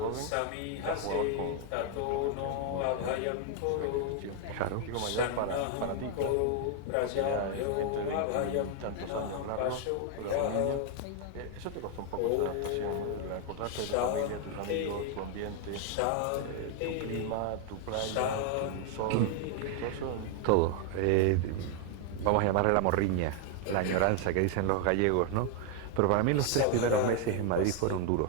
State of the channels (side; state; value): both; different; correlation 0.01